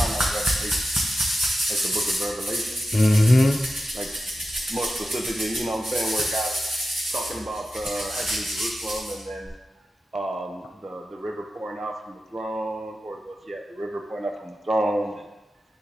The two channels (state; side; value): normal; both; correlation 0.93